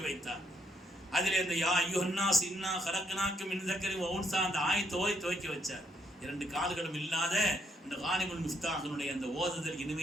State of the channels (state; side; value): normal; both; correlation 0.74